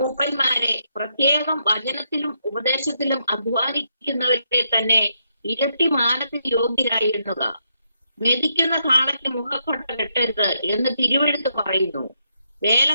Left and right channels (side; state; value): both; inverted; correlation -0.79